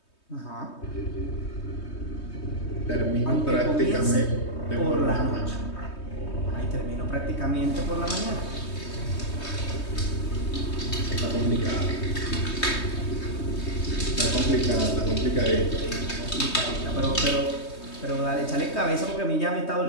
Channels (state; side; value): late; right; 3.2 ms